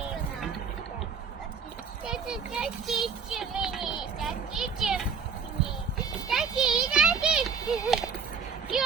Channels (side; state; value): left; quieter; 6.1 dB